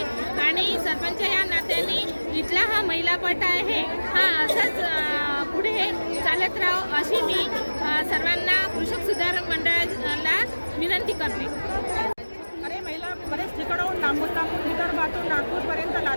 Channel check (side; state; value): both; inverted; correlation -1.00